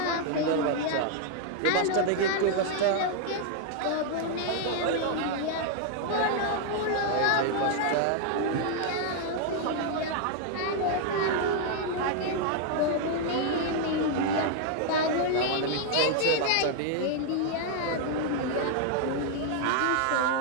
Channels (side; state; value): both; different; correlation 0.00